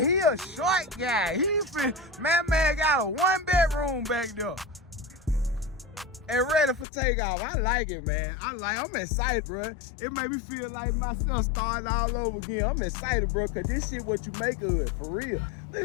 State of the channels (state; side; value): drops out; right; at 6.9 s